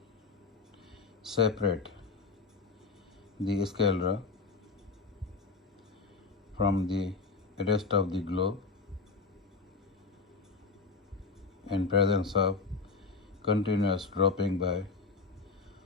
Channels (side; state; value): right; quieter; 4.3 dB